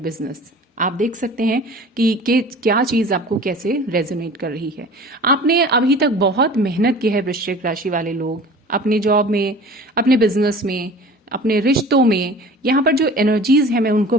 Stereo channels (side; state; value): both; normal; correlation 0.42